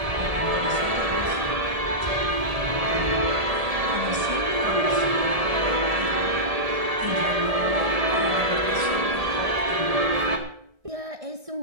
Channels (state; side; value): late; left; 1.8 ms